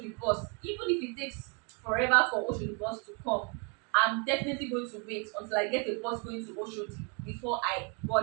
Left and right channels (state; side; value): quieter; left; 35.1 dB